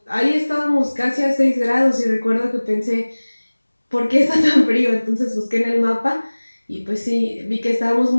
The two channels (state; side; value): inverted; both; correlation -1.00